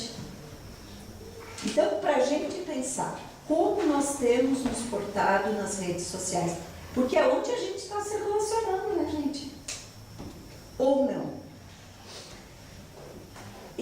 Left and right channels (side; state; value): both; identical; correlation 1.00